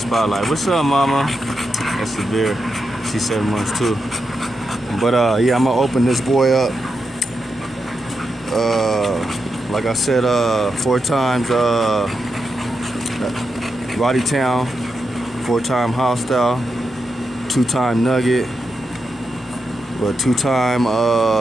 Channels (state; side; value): normal; both; correlation 0.86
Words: What's up, mama? That's Severe. She's 7 months too. But yeah, I'm gonna open this boy up. Like I said, 4 times Roddy Town, 4-time Hostile, 2-time Nugget, but 2-time